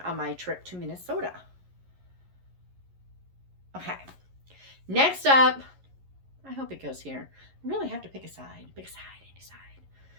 my trip to Minnesota. Okay. Next up, I hope it goes here. I really have to pick a side.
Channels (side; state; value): left; late; 11 ms